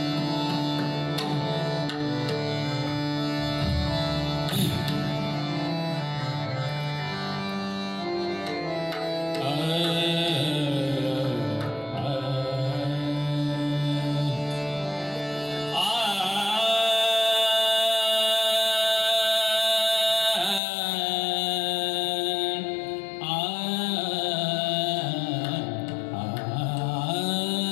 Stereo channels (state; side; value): drops out; right; at 20.6 s